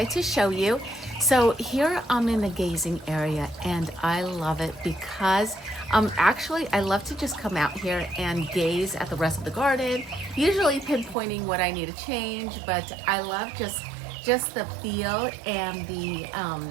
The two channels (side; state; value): left; drops out; at 11.2 s